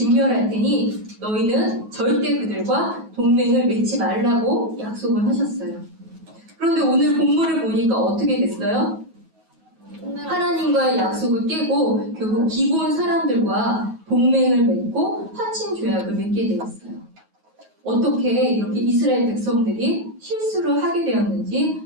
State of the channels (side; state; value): left; late; 9.3 ms